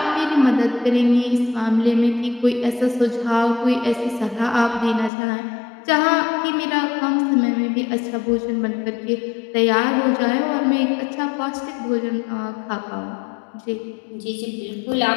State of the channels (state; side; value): drops out; right; at 5.1 s